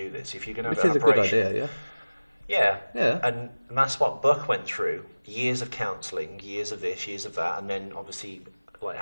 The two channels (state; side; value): inverted; both; correlation -1.00